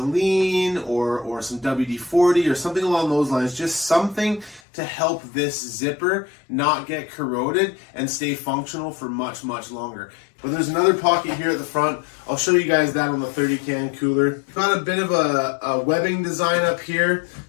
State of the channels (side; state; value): right; drops out; at 4.6 s